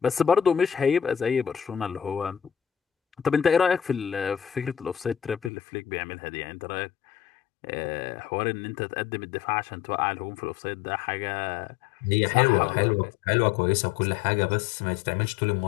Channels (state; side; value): drops out; right; at 5.5 s